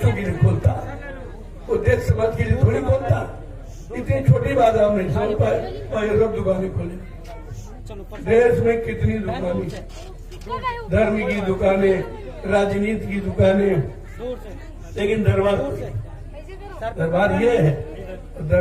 के लिए खोलता, वो देश समाज के लिए थोड़ी खोलता। इतनी छोटी बात आप नहीं समझ पाए और ये सब दुकानें खोले। देश में कितनी दुकानें, धर्म की दुकानें, राजनीति की दुकानें, लेकिन दरबार ये है।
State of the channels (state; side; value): identical; both; correlation 1.00